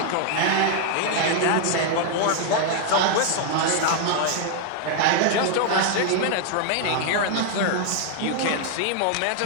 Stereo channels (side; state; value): both; different; correlation 0.00